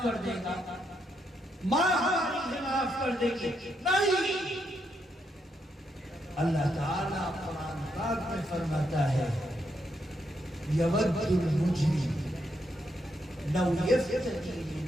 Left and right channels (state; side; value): normal; both; correlation 0.79